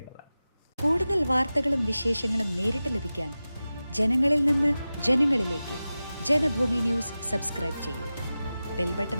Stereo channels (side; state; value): both; inverted; correlation -0.95